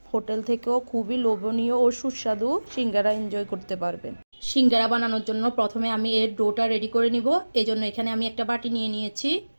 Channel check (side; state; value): both; inverted; correlation -1.00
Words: হোটেল থেকেও খুবই লোভনীয় ও সুস্বাদু সিঙ্গারা এনজয় করতে পারবেন। সিঙ্গারা বানানোর জন্য প্রথমে আমি এর ডোটা রেডি করে নিব। এই জন্য এখানে আমি একটা বাটি নিয়ে নিয়েছি।